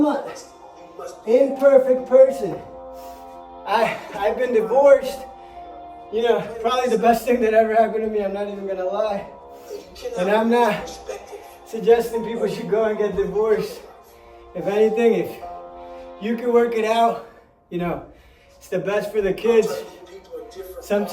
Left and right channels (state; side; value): identical; both; correlation 1.00